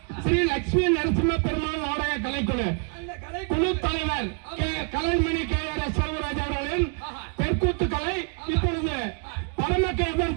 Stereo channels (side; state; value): left; quieter; 39.1 dB